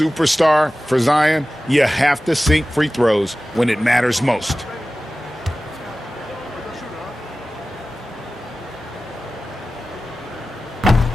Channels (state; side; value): normal; both; correlation 0.96